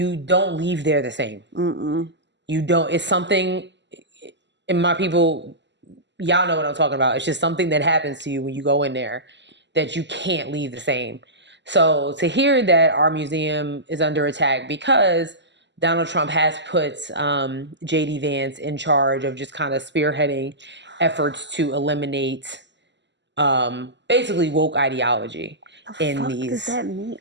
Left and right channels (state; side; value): late; left; 0.52 ms